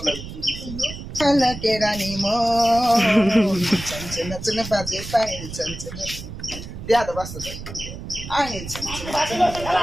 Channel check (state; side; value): noise; right; rumble, 10 dB below the sound